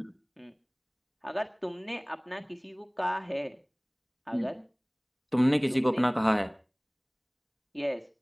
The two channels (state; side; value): identical; both; correlation 1.00